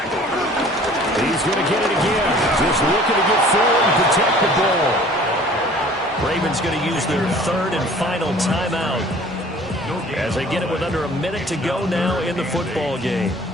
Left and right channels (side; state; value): both; normal; correlation 0.50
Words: He's going to get it again. Just looking to get forward and protect the ball. Ravens going to use their 3rd and final timeout as they get it with under a minute to go now in the football game.